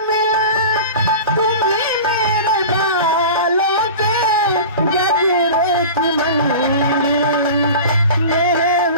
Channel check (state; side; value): inverted; both; correlation -0.35